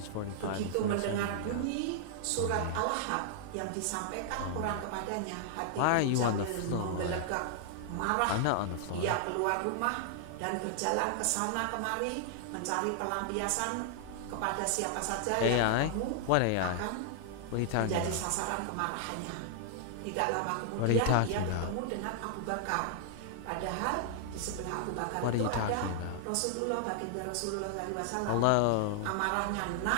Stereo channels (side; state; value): both; different; correlation -0.01